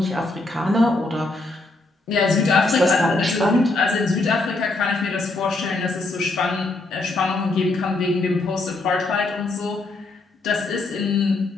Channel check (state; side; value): quieter; right; 3.1 dB